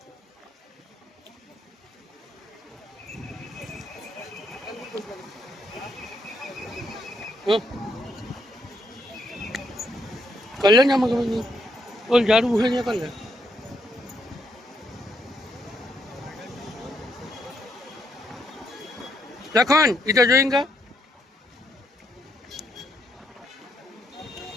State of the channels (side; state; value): both; normal; correlation 0.75